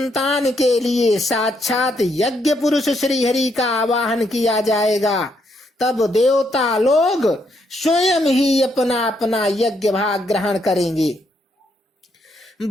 के लिए साक्षात यज्ञ पुरुष श्री हरि का आवाहन किया जाएगा, तब देवता लोग स्वयं ही अपना अपना यज्ञ भाग ग्रहण करेंगे।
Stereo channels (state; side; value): normal; both; correlation 0.75